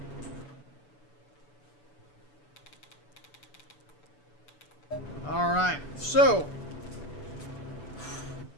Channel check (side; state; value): right; late; 6.9 ms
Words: All right. So,